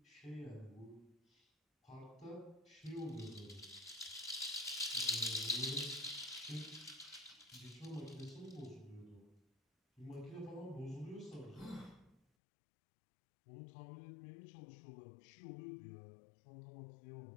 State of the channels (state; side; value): drops out; right; at 12.2 s